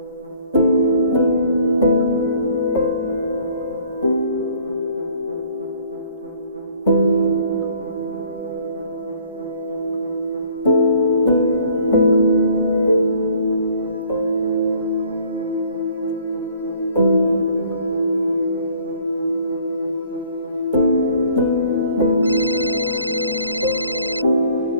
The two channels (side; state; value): both; inverted; correlation -0.58